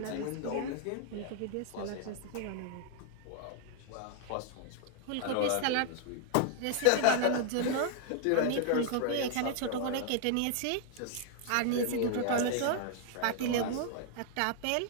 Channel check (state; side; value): different; both; correlation -0.01